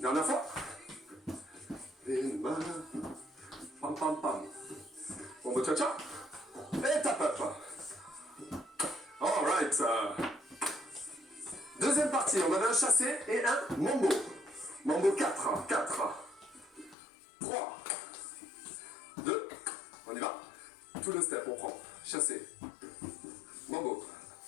Dernière fois. Une main. Pam pam pam. Mambo cha-cha. Et tap up. Alright. Deuxième partie, on avait un chassé et un mambo. Mambo 4. 4. 3. 2. On y va. Tout le step, on prend. Chassé. Mambo.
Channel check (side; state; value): right; drops out; at 16.9 s